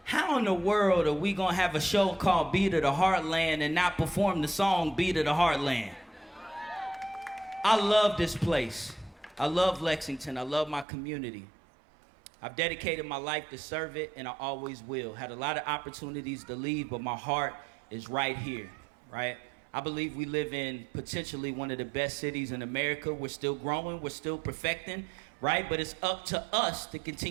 how in the world are we gonna have a show called Beat of the Heartland and not perform the song Beat of the Heartland? I love this place. I love Lexington. I love my community. I've dedicated my life to serve it, and I always will. Had a lot of opportunities to leave, but my heart is right here, right? I believe we live in potentially one of the best cities in America. We're still growing, we're still perfecting, right? But it's up to us to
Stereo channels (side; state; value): left; drops out; at 10.9 s